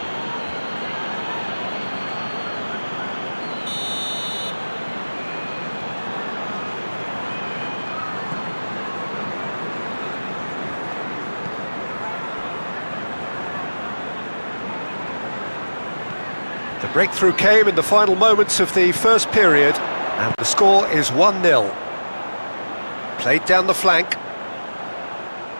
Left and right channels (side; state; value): both; inverted; correlation -1.00